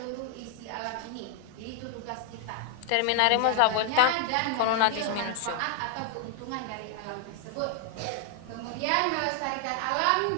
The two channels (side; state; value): both; different; correlation 0.00